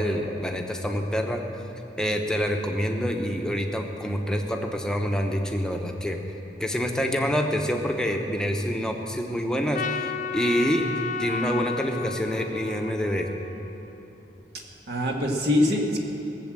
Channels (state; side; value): normal; both; correlation 0.74